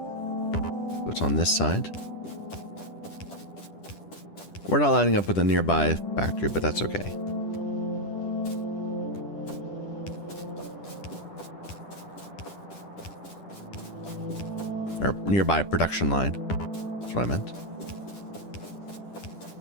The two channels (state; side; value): late; right; 10 ms